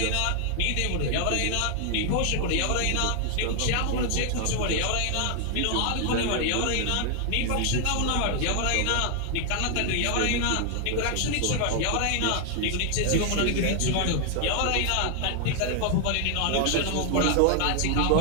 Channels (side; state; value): both; different; correlation 0.00